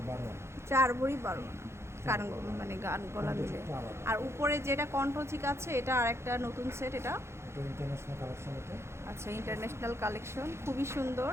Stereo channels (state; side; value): late; left; 0.13 ms